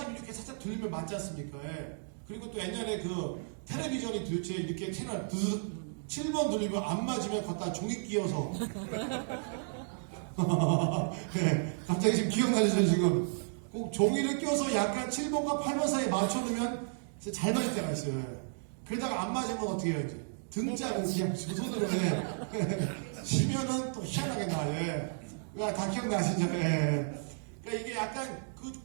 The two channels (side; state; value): left; silent; digital silence